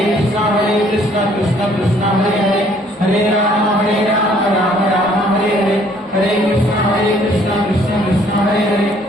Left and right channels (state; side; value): normal; both; correlation 0.61